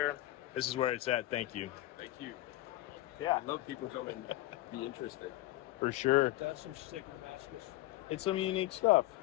this is where it's at. Thank you. Thank you. Yeah. I love people coming and be interested. For sure. does some sick Damascus. It's some unique stuff.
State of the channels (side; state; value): right; quieter; 16.8 dB